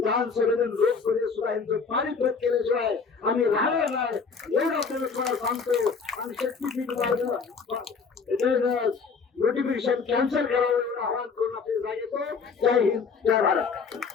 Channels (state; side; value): quieter; right; 5.2 dB